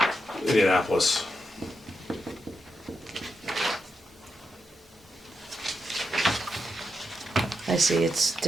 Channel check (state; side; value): normal; both; correlation 0.85